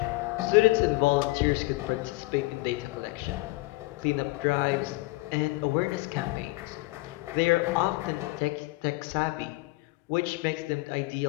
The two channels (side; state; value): right; quieter; 22.4 dB